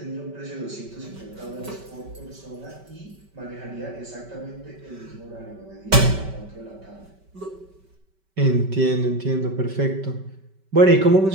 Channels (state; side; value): late; left; 5.2 ms